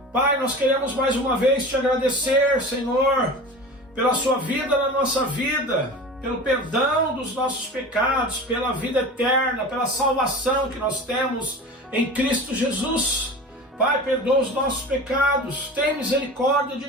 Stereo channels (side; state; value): both; normal; correlation 0.34